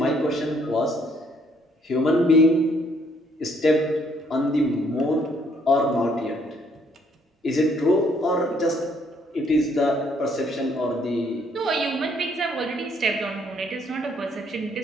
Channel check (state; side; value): normal; both; correlation 0.66